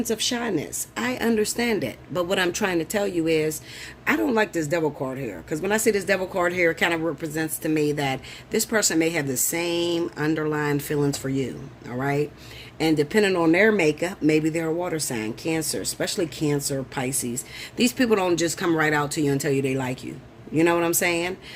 of shyness. I understand it. But what I'm trying to tell you is, I don't like this devil card here. Because when I see this devil card here, it kind of represents to me that this person may have the same underlying feelings for you. All right? And depending on their makeup, maybe they're a water sign, Cancer, especially Cancer, Pisces. These people don't just come right out to you and tell you they like you. You know what I'm saying?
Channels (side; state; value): both; identical; correlation 1.00